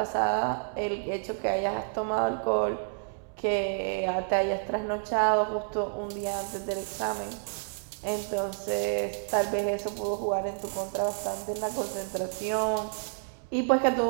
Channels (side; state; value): left; silent; digital silence